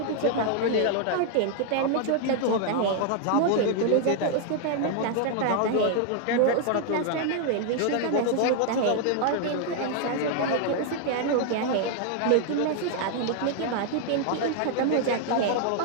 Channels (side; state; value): both; different; correlation 0.00